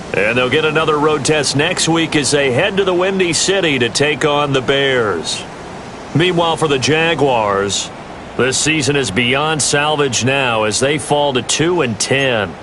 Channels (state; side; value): identical; both; correlation 1.00